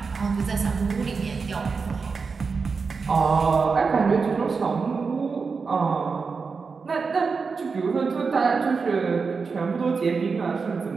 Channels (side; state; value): left; quieter; 4.9 dB